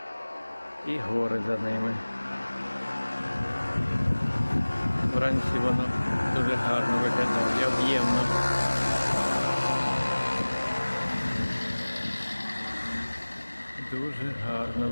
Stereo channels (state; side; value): inverted; both; correlation -1.00